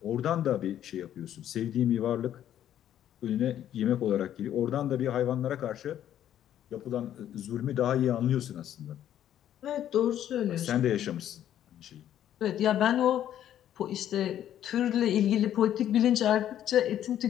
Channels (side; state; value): right; quieter; 11.0 dB